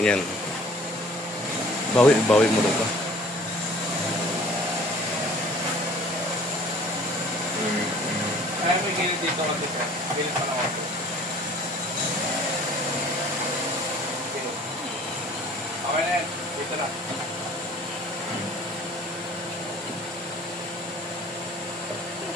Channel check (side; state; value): both; normal; correlation 0.50